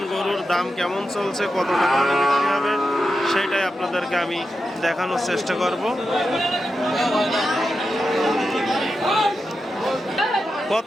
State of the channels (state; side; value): normal; both; correlation 0.89